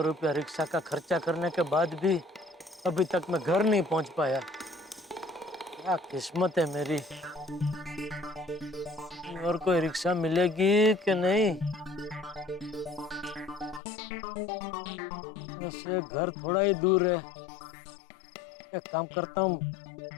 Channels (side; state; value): right; drops out; at 13.8 s